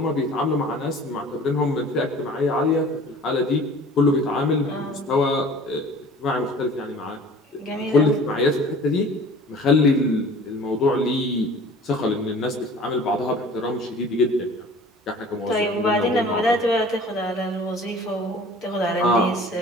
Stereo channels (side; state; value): both; normal; correlation 0.46